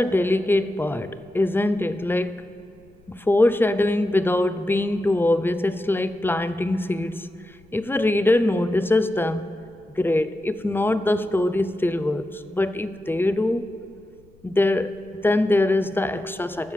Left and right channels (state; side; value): noise; left; rumble, 30 dB below the sound